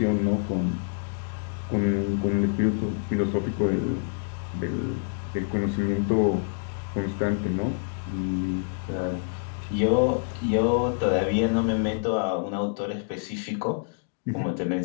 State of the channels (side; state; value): right; silent; digital silence